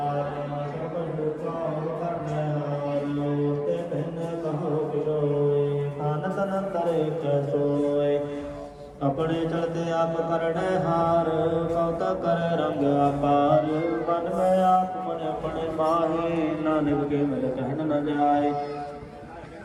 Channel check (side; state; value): both; identical; correlation 1.00